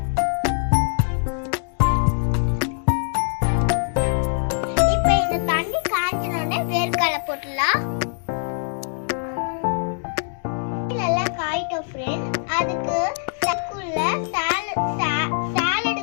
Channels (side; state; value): right; silent; digital silence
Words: இப்போ இந்த தண்ணி காய்ச்சினோடனே வேர்க்கடலை போட்டுடலாம். நல்லா காயிட்டோம் ஃப்ரெண்ட். அதுக்கு சக்குள்ள